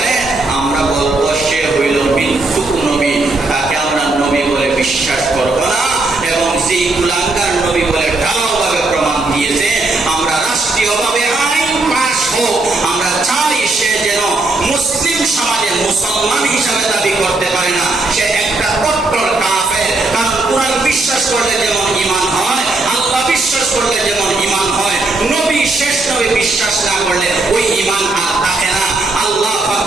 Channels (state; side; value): quieter; left; 3.1 dB